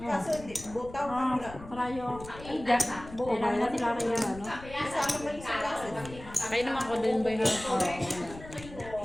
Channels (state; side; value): noise; left; rumble, 15 dB below the sound